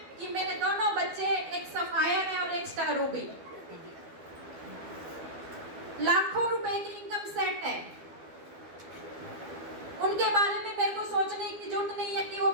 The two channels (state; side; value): late; left; 12 ms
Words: कि मेरे दोनों बच्चे, एक सफायर है और एक स्टार रूबी, लाखों रुपए की इनकम सेट है। उनके बारे में मेरे को सोचने की जरूरत नहीं है कि वो